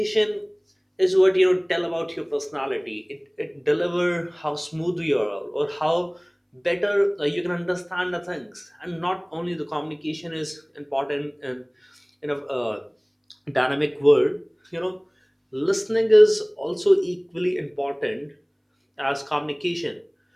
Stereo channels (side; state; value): both; identical; correlation 1.00